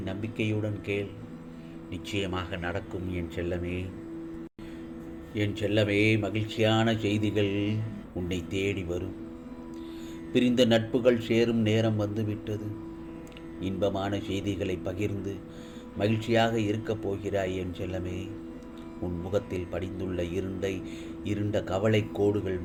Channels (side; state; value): both; identical; correlation 1.00